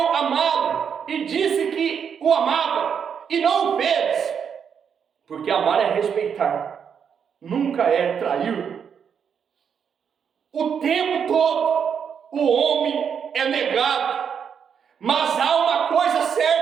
amá-lo e disse que o amava, e não o fez, porque amar é respeitar, nunca é trair. O tempo todo o homem é negado, mas há uma coisa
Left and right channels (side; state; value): left; quieter; 7.3 dB